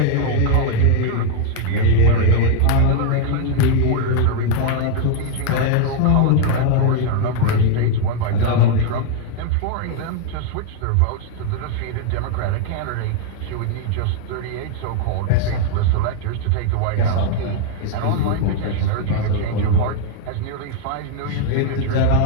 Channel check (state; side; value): different; both; correlation 0.00